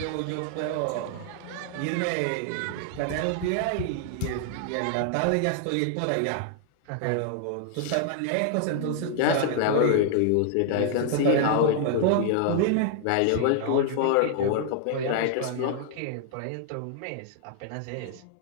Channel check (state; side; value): different; both; correlation 0.00